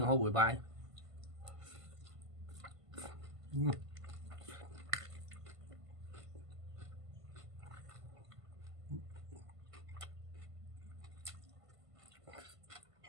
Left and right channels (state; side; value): late; left; 1.5 ms